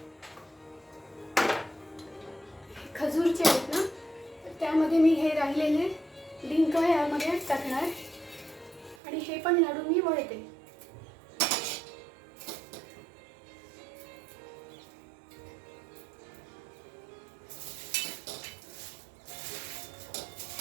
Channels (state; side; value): drops out; left; at 9.0 s